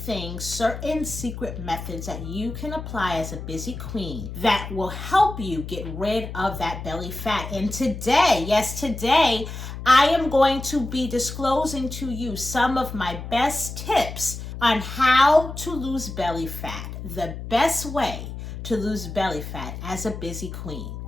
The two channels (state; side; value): noise; left; hum, 9 dB below the sound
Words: certain secret methods that you can apply as a busy queen that will help you get rid of that belly fat. And today, yes, today, I am going to be disclosing to you some of my best tips on how to lose belly fat, the best way to lose belly fat as a busy queen.